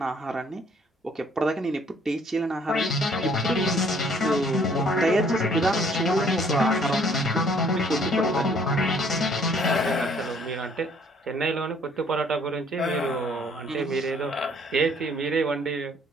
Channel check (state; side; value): normal; both; correlation 0.61